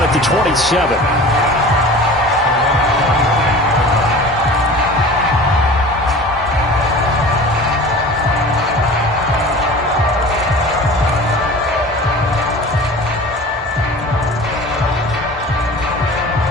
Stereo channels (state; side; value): normal; both; correlation 0.39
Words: at the 27.